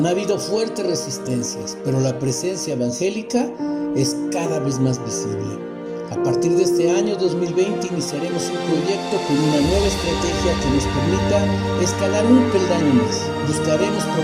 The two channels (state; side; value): identical; both; correlation 1.00